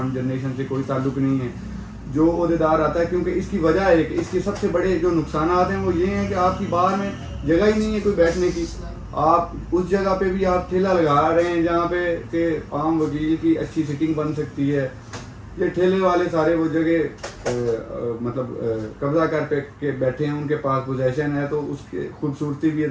جنریشن سے کوئی تعلق نہیں ہے. جو عہدیدار آتا ہے، کیونکہ اس کی وجہ ہے کہ اس کے سب سے بڑے جو نقصانات ہیں وہ یہ ہیں کہ آپ کی بار میں جگہ ہی نہیں ہے کوئی بیٹھنے کی. آپ اس جگہ پہ بھی آپ ٹھیلا لگا رہے ہیں جہاں پہ کہ عام وکیل کی اچھی سیٹنگ بن سکتی ہے. یہ ٹھیلے والے سارے وہ جگہ مطلب قبضہ کر کے بیٹھے ہیں، ان کے پاس پوزیشن ہے، تو اس کی خوبصورتی بھی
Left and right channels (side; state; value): both; identical; correlation 1.00